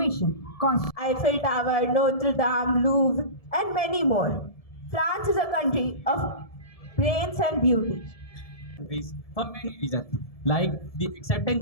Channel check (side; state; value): right; late; 1.7 ms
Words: Eiffel Tower, Notre Dame, Louvre, and many more. France is a country of brains and beauty. Countries for many reasons, like the